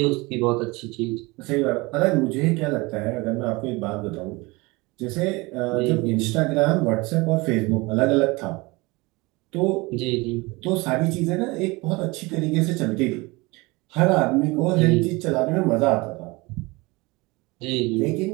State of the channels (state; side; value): quieter; left; 24.0 dB